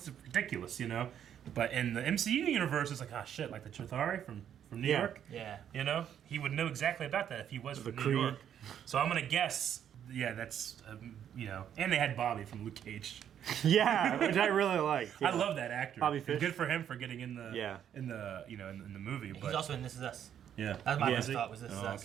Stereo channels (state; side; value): quieter; left; 9.5 dB